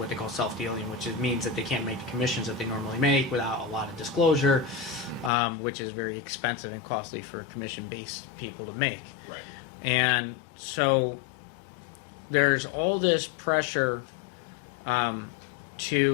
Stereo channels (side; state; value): right; drops out; at 5.3 s